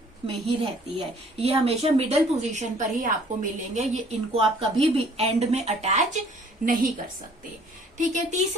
में ही रहती है। ये हमेशा मिडल पोजीशन पर ही आपको मिलेंगे, ये इनको आप कभी भी एंड में अटैच नहीं कर सकते। ठीक है।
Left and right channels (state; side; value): normal; both; correlation 0.57